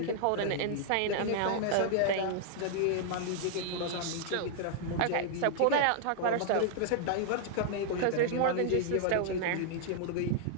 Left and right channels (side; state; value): both; different; correlation -0.01